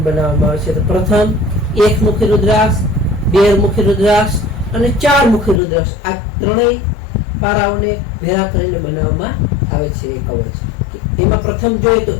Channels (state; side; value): drops out; right; at 5.6 s